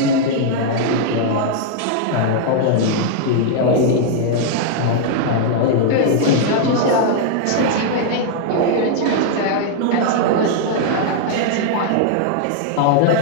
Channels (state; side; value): different; both; correlation 0.00